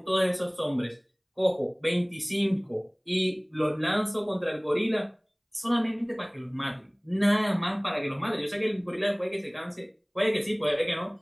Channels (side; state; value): both; identical; correlation 1.00